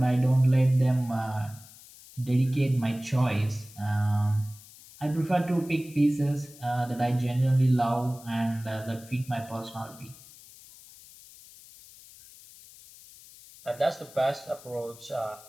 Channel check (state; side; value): noise; left; hiss, 21 dB below the sound